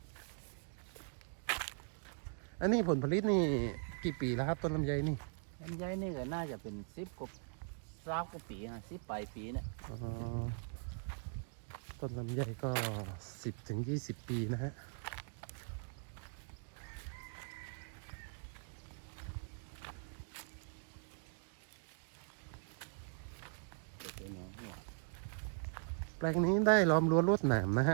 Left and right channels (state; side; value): silent; left; 51 dB below the other